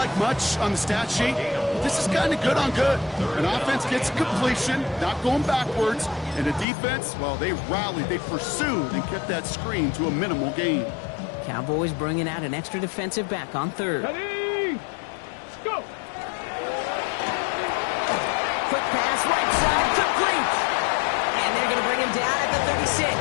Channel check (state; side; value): drops out; right; at 6.7 s